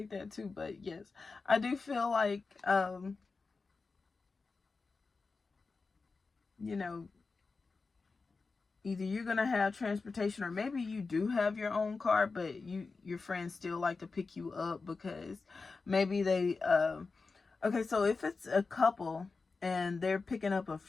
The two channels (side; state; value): right; quieter; 4.2 dB